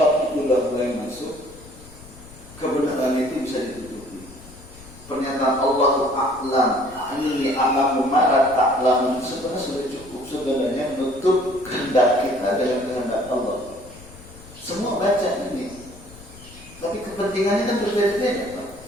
itu sudah mulai masuk, kebenaran itu bisa ditutupi. Pernyataan Allahu a'lam, ini a'lamu ma la ta'lamun sebenarnya sudah cukup sebenarnya menutup kehendak kita dengan kehendak Allah. Semua baca ini, tapi kepentingannya kan berbeda-beda.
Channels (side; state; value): left; noise; rumble, 20 dB below the sound